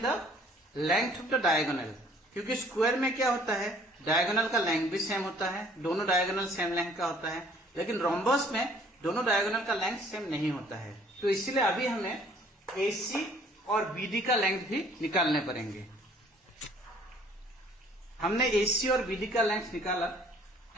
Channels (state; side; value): normal; both; correlation 0.57